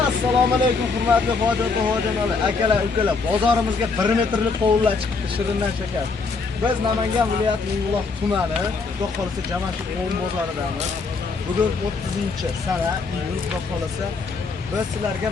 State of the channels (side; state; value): right; quieter; 4.4 dB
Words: Assalomu alaykum hurmatli hojonalar, akalar, ukalar. Bozorimizga 1 metrlik qovunlar chiqdi, shirindan shakar. Biz Namangan viloyatining Mingbuloq tumani, xudo xolasa Jamashid qovun bozoridamiz. Bugun 30-sana iyul, xudo xolasa biz sizlarga